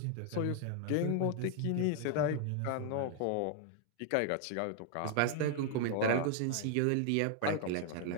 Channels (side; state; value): both; different; correlation 0.00